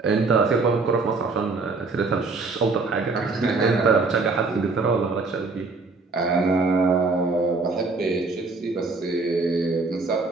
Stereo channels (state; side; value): quieter; left; 3.9 dB